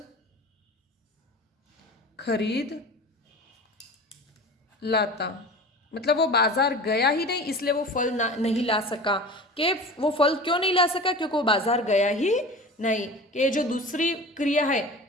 खरीद लाता। मतलब वो बाजार गया ही नहीं इसलिए वो फल नहीं ला सका। कि वो फल क्यों नहीं ला सका, क्योंकि वो बाजार गया ही नहीं। कि जो दूसरी क्रिया है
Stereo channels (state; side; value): normal; both; correlation 0.36